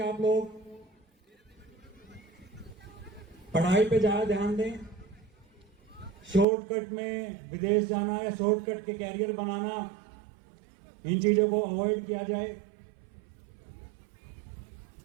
आप लोग पढ़ाई पे ज्यादा ध्यान दें, शॉर्टकट में विदेश जाना या शॉर्टकट के कैरियर बनाना, इन चीजों को अवॉइड किया जाए।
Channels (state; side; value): drops out; left; at 6.5 s